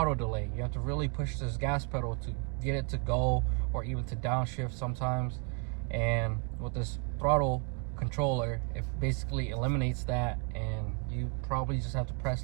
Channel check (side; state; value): left; quieter; 34.1 dB